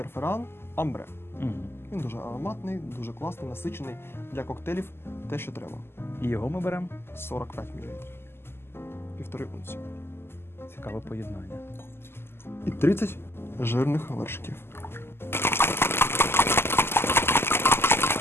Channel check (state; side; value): late; right; 0.12 ms